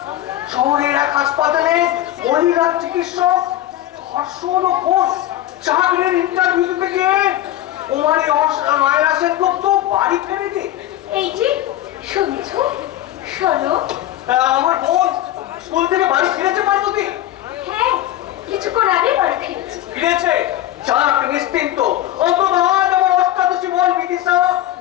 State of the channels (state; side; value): quieter; right; 13.7 dB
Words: শহরের এক হাসপাতালে মহিলা চিকিৎসক ধর্ষণ ও খুন, চাকরির ইন্টারভিউ দিতে গিয়ে কুমারী মায়েরা সেনগুপ্ত বাড়ি ফেরে দিয়ে। এই যে শুনছো, শোনো। আমার বোন স্কুল থেকে বাড়ি ফিরেছে পার্বতী? হ্যাঁ, কিছুক্ষণ আগে বাড়ি ফিরেছি। ফিরেছে? যাক, নিশ্চিন্ত। অন্তত আজ আমার অষ্টাদশী বোন বিদিশা